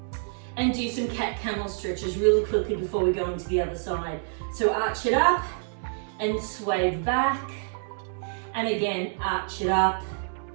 and do some camel stretches really quickly before we go into the other side. So arch it up and sway back. And again, arch it up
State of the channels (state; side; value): silent; left; digital silence